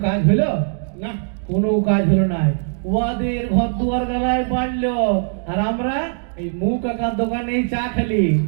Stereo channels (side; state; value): left; silent; digital silence